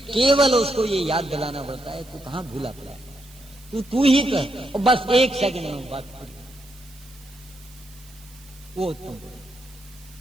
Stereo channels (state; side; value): noise; right; hiss, 24 dB below the sound